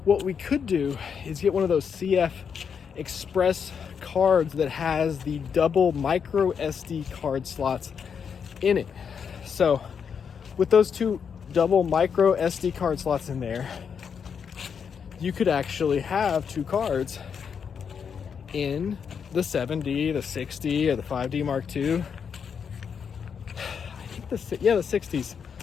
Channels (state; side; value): quieter; right; 6.8 dB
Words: What we could do is get one of those CF Express cards that has the double micro SD card slots in it. So, with those 2 double micro SD card slots in there, you could actually have 2 cards in the 7D, the 6D, or the 5D Mark II. The 60s